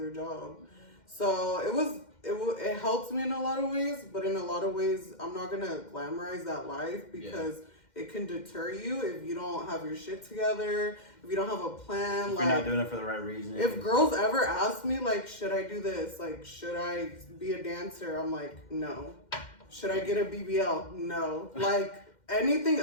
job. So it helps me in a lot of ways, but in a lot of ways I'm not gonna glamorize that life, because it can deter you if you don't have your shit together, if you don't have a plan. If you're not doing it for the right reason. If girls ever ask me like, should I do this? Like, should I be a dancer? I'm like, no. Should I get a BBL? No. Like, anything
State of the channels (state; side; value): late; right; 2.1 ms